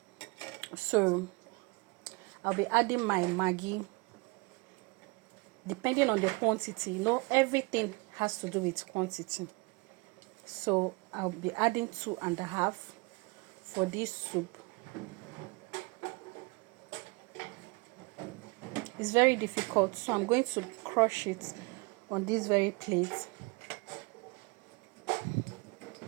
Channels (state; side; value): quieter; left; 27.2 dB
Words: So I'll be adding my Maggi. Depending on the quantity, everything has to do with quantity. So I'll be adding 2.5 for this soup. It's very difficult, so I'm going to crush it on this very plate.